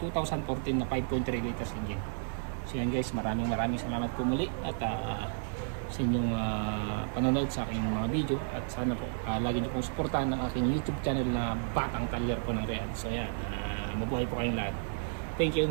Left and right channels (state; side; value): silent; left; 56 dB below the other